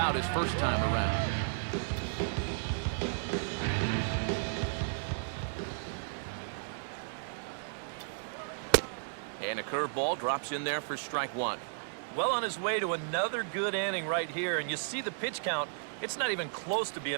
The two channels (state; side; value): silent; left; digital silence